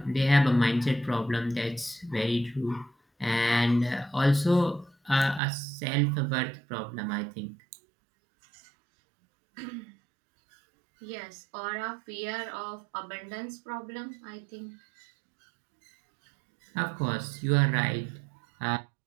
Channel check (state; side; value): drops out; left; at 5.4 s